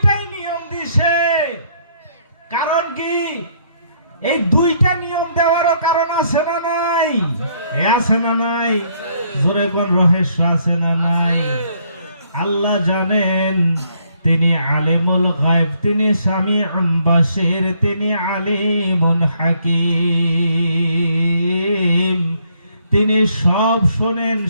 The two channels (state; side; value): inverted; both; correlation -0.69